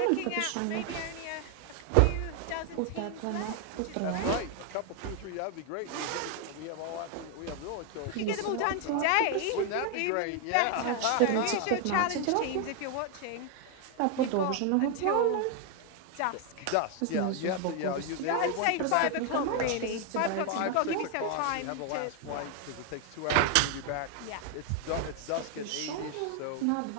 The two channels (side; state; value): both; different; correlation 0.00